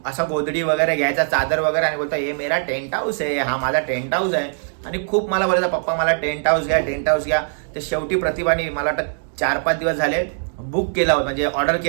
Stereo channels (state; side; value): silent; left; digital silence